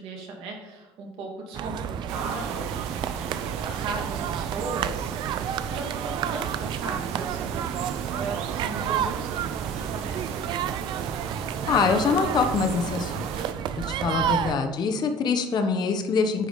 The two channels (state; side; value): normal; both; correlation 0.42